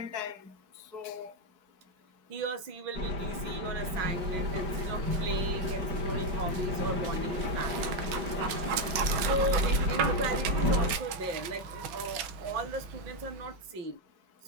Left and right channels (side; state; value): left; late; 5.4 ms